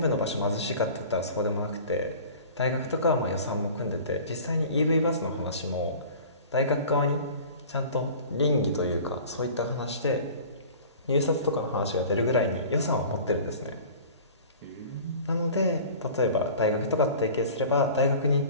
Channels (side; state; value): both; inverted; correlation -0.42